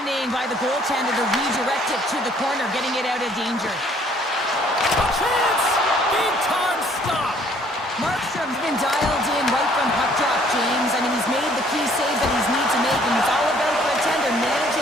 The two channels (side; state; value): both; normal; correlation 0.61